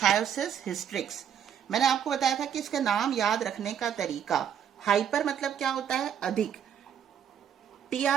हिस्ट्रिक्स। मैंने आपको बताया था कि इसका नाम याद रखने का तरीका, हाइपर मतलब क्या होता है? अधिक,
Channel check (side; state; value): left; quieter; 8.8 dB